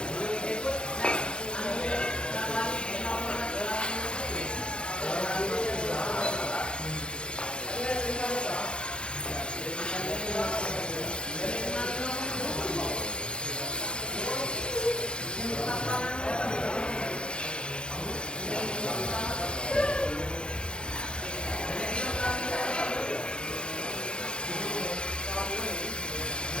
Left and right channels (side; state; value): right; late; 0.053 ms